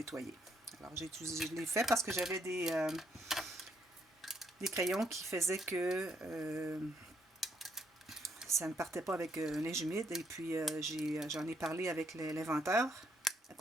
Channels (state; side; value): normal; both; correlation 0.73